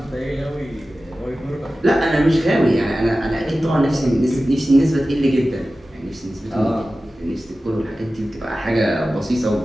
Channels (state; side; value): normal; both; correlation 0.95